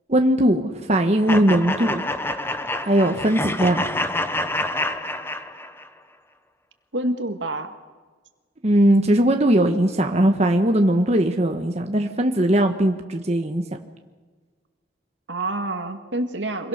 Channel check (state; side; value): normal; both; correlation 0.67